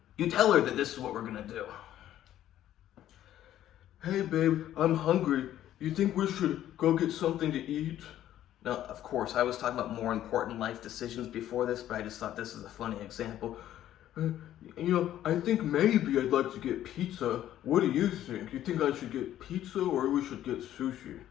You tell her that this is what we're gonna do. Hey babe, I'm hungry. You think we should go get something to eat? Now, of course, I was talking about more important life decisions before this, but I just thought this is a funny example. I think maybe I'd like to get pizza. What do you think? You think I should get pizza or we should get sushi?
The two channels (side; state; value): right; quieter; 12.3 dB